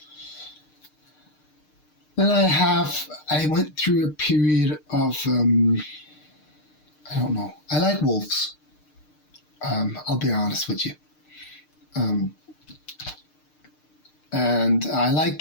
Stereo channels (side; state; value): right; late; 6.6 ms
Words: Then I went through a period of, I don't know. I like wolves. I'll be honest with you. And I like